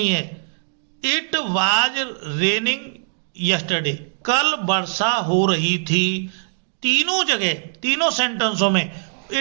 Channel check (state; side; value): silent; left; digital silence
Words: है। इट वाज रेनिंग यस्टरडे, कल वर्षा हो रही थी। तीनों जगह तीनों सेंटेंसों में